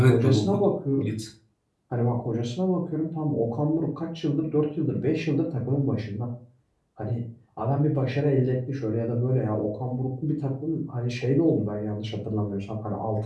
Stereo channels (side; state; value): both; identical; correlation 1.00